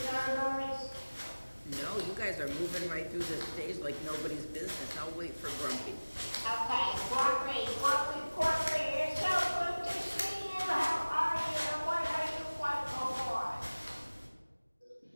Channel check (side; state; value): both; inverted; correlation -1.00